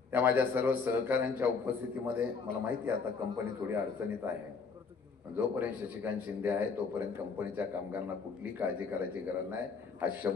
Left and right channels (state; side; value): quieter; right; 5.1 dB